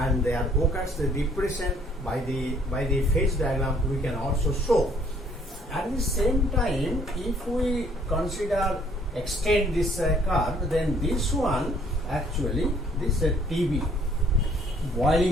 there occurs the depression by the phase diagram we can also show. At the same time, if we extend this curve, then this one actually this TB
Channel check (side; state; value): both; normal; correlation 0.61